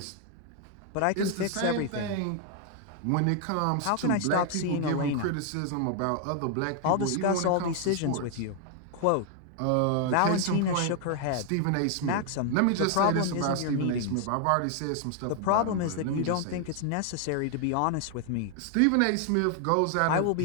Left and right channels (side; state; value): both; different; correlation 0.00